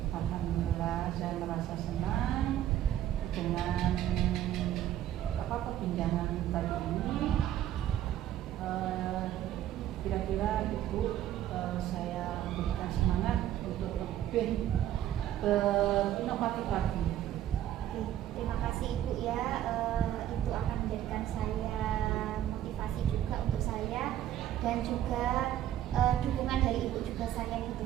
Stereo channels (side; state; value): left; quieter; 11.9 dB